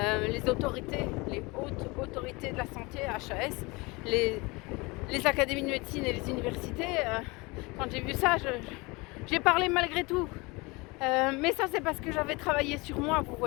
les autorités, les hautes autorités de la santé, HAS, les académies de médecine et les universités. Quand j'ai vu ça, j'ai parlé malgré tout. Mais ça, c'est parce que j'avais travaillé sur moi, vous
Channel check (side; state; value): right; quieter; 25.3 dB